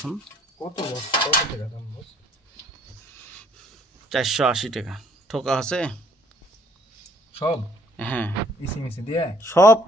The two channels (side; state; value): both; normal; correlation 0.61